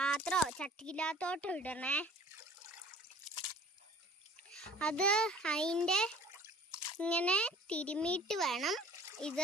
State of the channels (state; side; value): normal; both; correlation 0.48